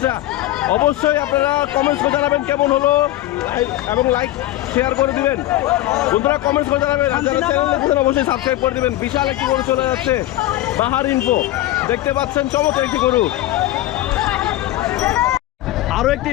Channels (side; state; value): right; quieter; 15.3 dB